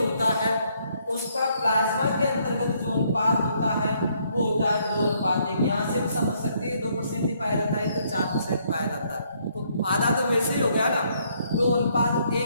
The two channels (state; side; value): inverted; both; correlation -0.70